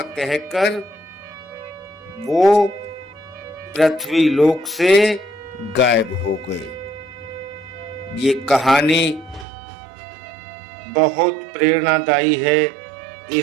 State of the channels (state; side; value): drops out; left; at 9.5 s